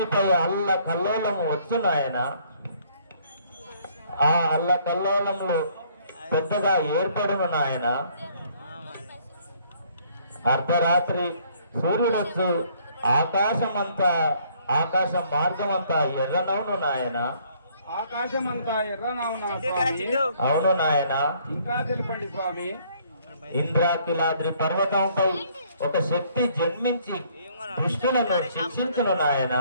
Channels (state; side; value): inverted; both; correlation -0.63